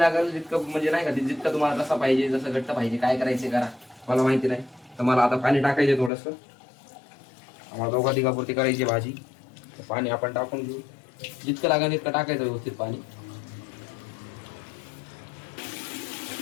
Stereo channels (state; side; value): drops out; right; at 6.1 s